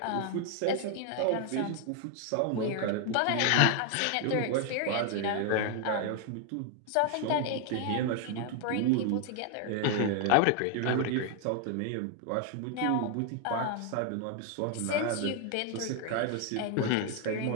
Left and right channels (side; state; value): both; different; correlation 0.00